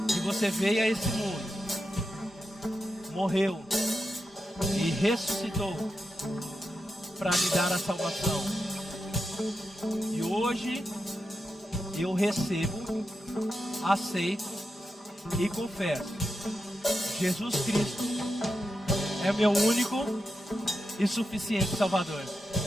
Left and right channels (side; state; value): both; normal; correlation 0.88